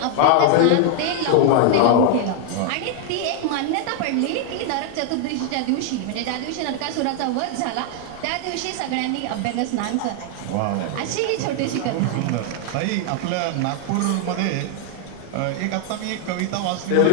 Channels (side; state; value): both; different; correlation 0.00